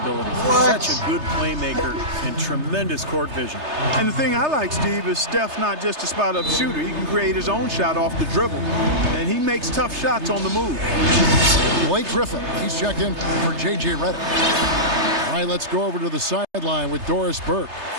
He's such a good playmaker and tremendous court vision. And the thing I like, Steve, is Steph's not just a spot-up shooter. He can create his own shot off the dribble. And he makes tough shots on the move. Blake Griffin, he's checked in for J.J. Redick. All right, let's go over to the sideline with Doris Burke.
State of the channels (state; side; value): late; left; 3.3 ms